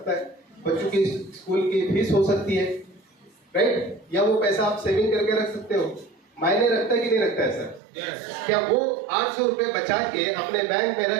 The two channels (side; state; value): left; drops out; at 7.8 s